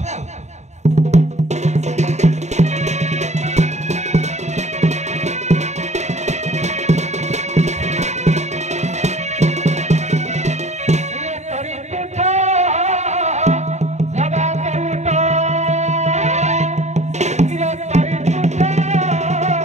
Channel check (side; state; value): left; late; 0.33 ms